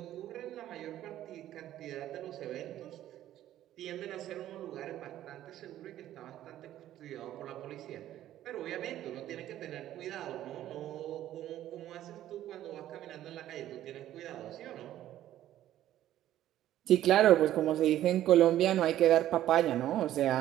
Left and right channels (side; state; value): left; quieter; 12.8 dB